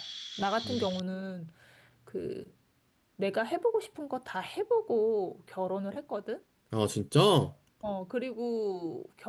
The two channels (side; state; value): both; identical; correlation 1.00